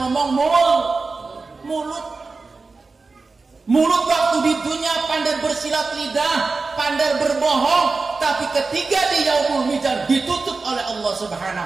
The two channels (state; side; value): quieter; left; 4.0 dB